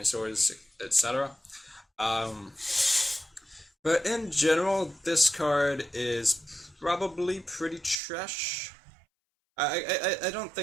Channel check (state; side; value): drops out; left; at 8.0 s